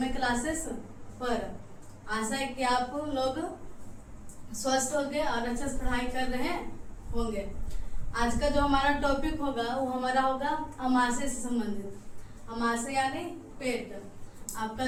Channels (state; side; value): identical; both; correlation 1.00